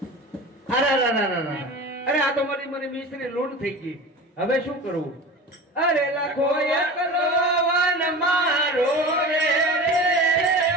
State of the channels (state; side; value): normal; both; correlation 0.33